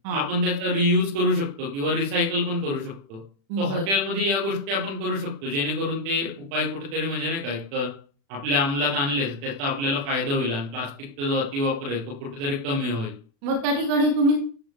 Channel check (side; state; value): left; late; 36 ms